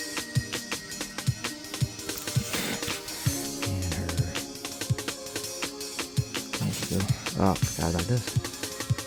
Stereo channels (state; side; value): identical; both; correlation 1.00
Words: Oh, forgot about this.